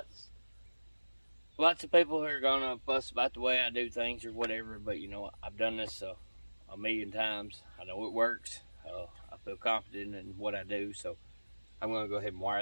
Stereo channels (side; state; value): both; inverted; correlation -1.00